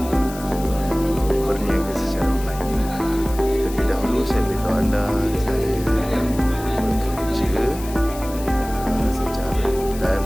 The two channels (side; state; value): left; noise; hiss, 15 dB below the sound